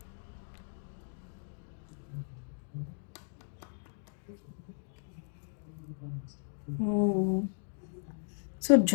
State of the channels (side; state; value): right; silent; digital silence